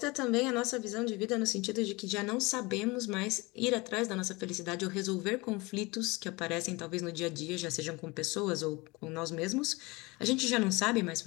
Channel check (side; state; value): right; quieter; 24.2 dB